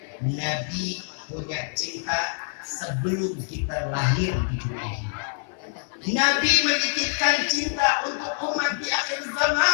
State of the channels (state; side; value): silent; right; 58 dB below the other